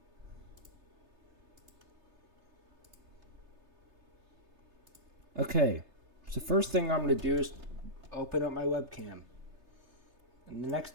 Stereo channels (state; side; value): late; left; 3.3 ms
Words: Okay, so first thing I'm going to do is open up my webcam. And the next